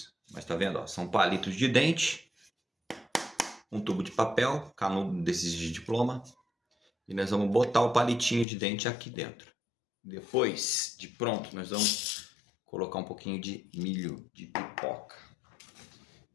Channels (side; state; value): right; drops out; at 8.5 s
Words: Mas tá vendo, ó, são palitos de dente. Um tubo de papel, canudo desses de diploma. E nós vamos botar o palitinho de dente aqui dentro. Depois de pronto, nós vamos colocar um pouquinho de milho de pipoca.